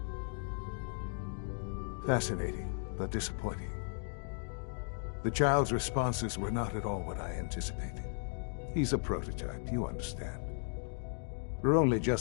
Fascinating, but disappointing. The child's responses were not at all what I anticipated. He's a prototype, you understand. We're only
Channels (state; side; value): silent; right; digital silence